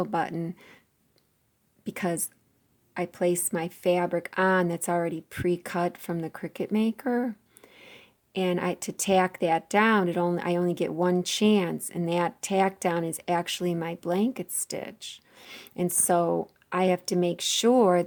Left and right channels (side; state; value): both; identical; correlation 1.00